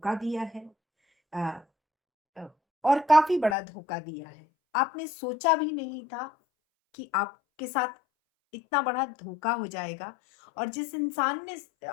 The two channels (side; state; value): right; drops out; at 3.6 s